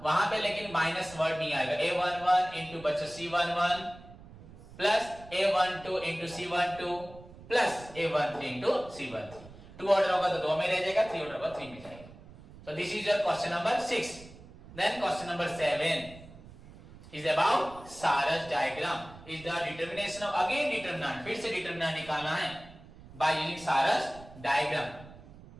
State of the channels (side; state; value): right; noise; rumble, 19 dB below the sound